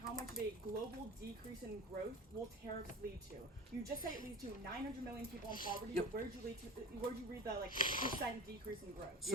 how much of a global decrease in growth will tariffs lead to? You just said it leads to 900 million people in poverty. Yep. Where did you read the percent decrease in growth?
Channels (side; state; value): both; normal; correlation 0.34